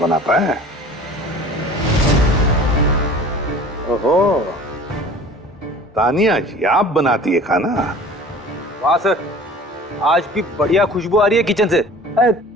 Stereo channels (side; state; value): both; normal; correlation 0.44